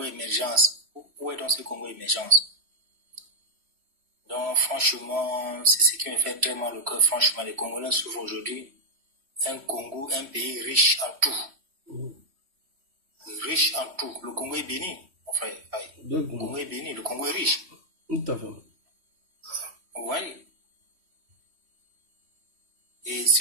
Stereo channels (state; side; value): late; left; 3.1 ms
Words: émergence. Où est donc ce Congo émergence? Donc, franchement, c'est ce qui me fait très mal au cœur. Franchement, les Congolais souffrent aujourd'hui. Un Congo, un pays riche en tout. Riche en tout. Le Congo est béni, mon frère. Le Congo est béni, le Congo est riche. Tout à fait. Vous voyez? Et